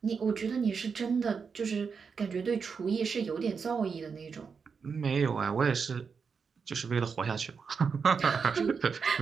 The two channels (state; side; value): quieter; left; 5.7 dB